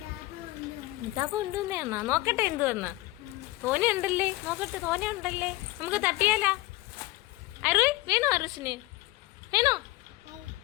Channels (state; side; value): quieter; right; 19.3 dB